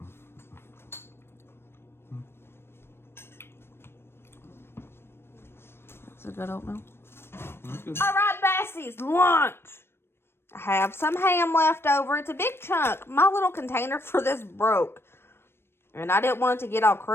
That's a good oatmeal. All right, Bassies, lunch. I have some ham left over. It's a big chunk. My little container for this broke. And I didn't want it to get all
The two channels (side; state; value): right; late; 0.12 ms